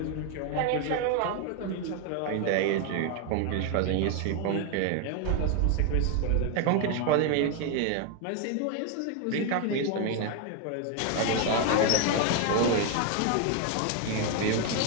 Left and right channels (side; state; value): both; different; correlation 0.01